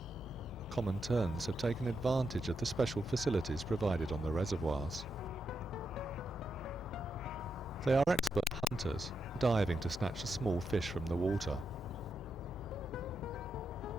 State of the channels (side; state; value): both; normal; correlation 0.84